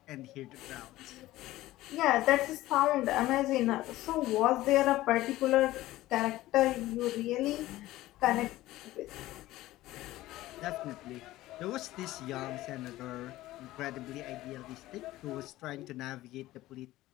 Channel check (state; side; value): quieter; right; 16.5 dB